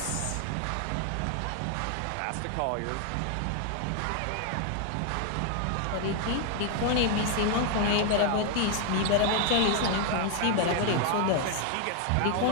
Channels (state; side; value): different; both; correlation 0.00